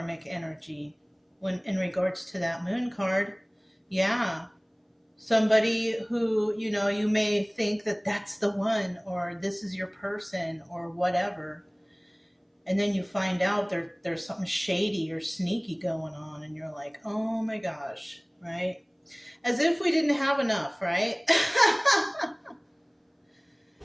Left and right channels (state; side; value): identical; both; correlation 1.00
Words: energy when in regards to that Moon card. Yeah. Somebody who, you may think that that's the one, or this is your person, or whatever. And then you find out there's something shady or sneaky going on, and you're like, oh my gosh, right? As if we didn't have enough, right?